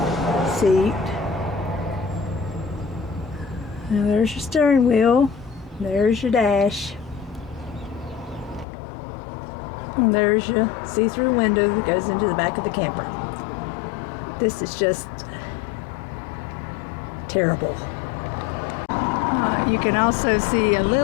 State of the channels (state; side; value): drops out; right; at 8.7 s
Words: seat. Now there's your steering wheel. There's your dash. And there's your see-through window that goes into the back of the camper. This is just terrible. You can also see a